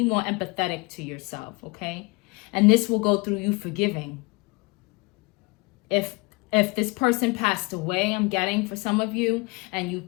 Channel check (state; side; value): quieter; right; 26.7 dB